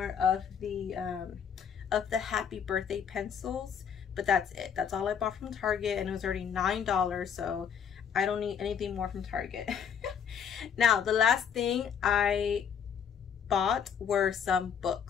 of the Happy Birthday pencils, but that's it. That's all I bought from Target, and it was already $9, so I don't need anything more from Target. Now the last thing I bought were some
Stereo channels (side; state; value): right; quieter; 7.7 dB